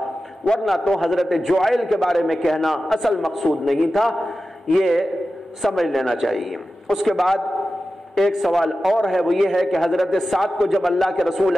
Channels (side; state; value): both; normal; correlation 0.93